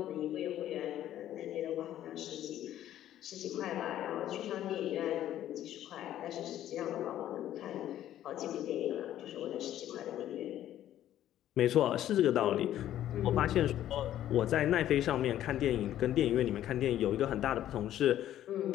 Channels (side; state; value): right; quieter; 12.1 dB